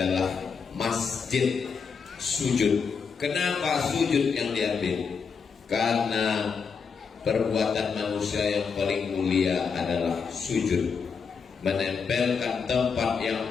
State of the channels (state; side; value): quieter; right; 5.8 dB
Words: masjid sujud. Kenapa sujud yang diambil? Karena perbuatan manusia yang paling mulia adalah sujud, menempelkan tempat yang